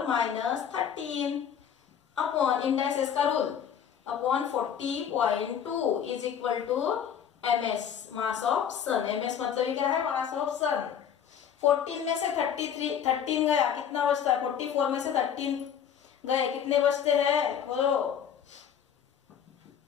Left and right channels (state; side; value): quieter; right; 8.5 dB